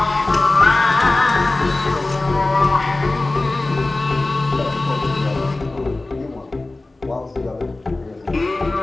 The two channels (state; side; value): quieter; right; 3.0 dB